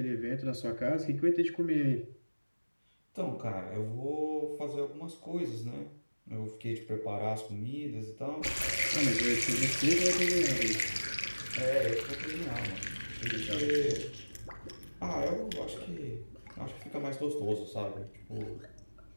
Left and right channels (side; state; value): both; inverted; correlation -1.00